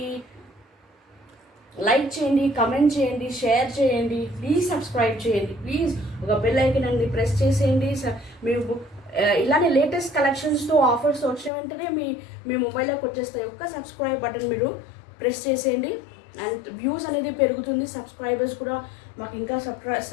లైక్ చేయండి, కమెంట్ చేయండి, షేర్ చేయండి, ప్లీజ్ సబ్స్క్రైబ్ చేయండి. ప్లీజ్ ఒక బెల్ ఐకాన్ అండి ప్రెస్ చేసేయండి. మీరు ఇలానే లేటెస్ట్ కలెక్షన్స్తో ఆఫర్స్ వచ్చిన వెంటనే మీ మొబైల్లోకి వచ్చేస్తాయి. ఒక్క సబ్స్క్రైబ్ బటన్ మీరు ప్రెస్ చేసేయండి. అండ్ వ్యూస్ అనేది పెరుగుతుంది, సబ్స్క్రైబర్స్ కూడా మాకు ఇంకా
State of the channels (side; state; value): right; drops out; at 11.5 s